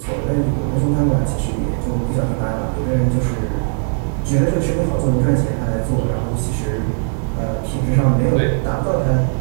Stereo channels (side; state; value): left; silent; 65 dB below the other